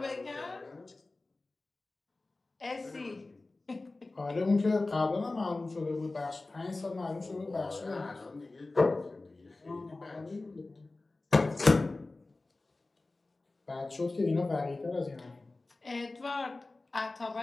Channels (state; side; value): quieter; right; 3.2 dB